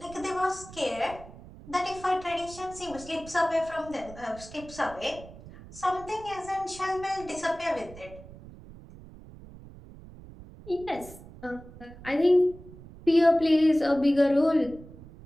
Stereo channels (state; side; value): noise; right; rumble, 18 dB below the sound